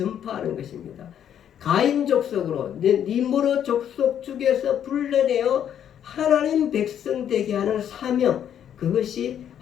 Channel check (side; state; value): right; quieter; 9.6 dB